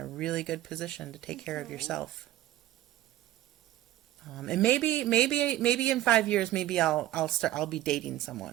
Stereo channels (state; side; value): quieter; left; 14.4 dB